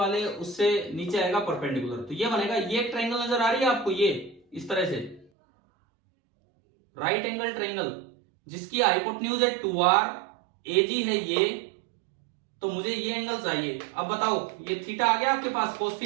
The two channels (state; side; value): drops out; left; at 5.3 s